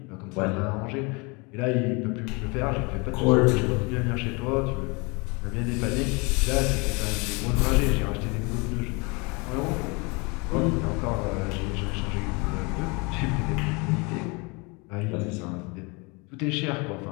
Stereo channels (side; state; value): right; quieter; 29.0 dB